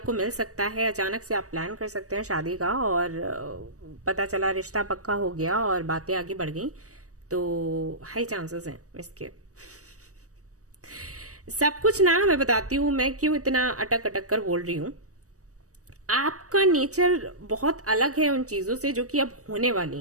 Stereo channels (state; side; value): late; left; 0.66 ms